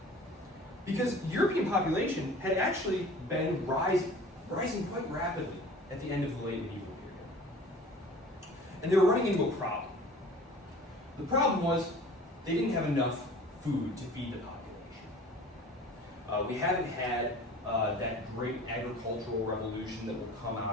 Because the European population had actually been rising quite rapidly at the end of the late medieval period. And they were running into a problem. The problem was they didn't have enough food to feed the population. We haven't had that great agricultural revolution that will come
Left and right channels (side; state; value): both; normal; correlation 0.44